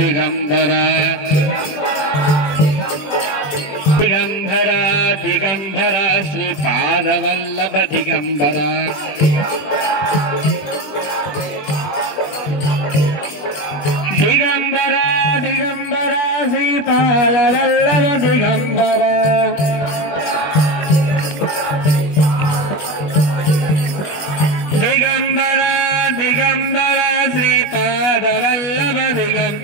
దిగంబర దిగంబర శ్రీపాదవల్లభ దిగంబర దిగంబర దిగంబర శ్రీపాదవల్లభ దిగంబర దిగంబర దిగంబర శ్రీపాదవల్లభ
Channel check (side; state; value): right; late; 20 ms